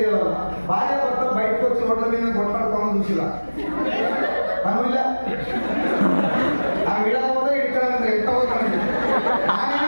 భార్య భర్త బయటకు వచ్చి రోడ్ల మీద కొట్లాడుకోమని చూసిలా పనులా ఆ విడకపోతే ఇక్కడ ఎంత పోతాను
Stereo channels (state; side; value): inverted; both; correlation -1.00